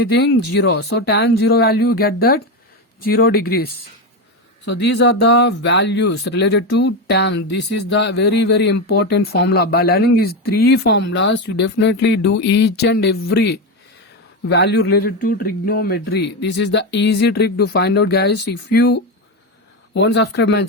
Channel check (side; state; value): both; normal; correlation 0.14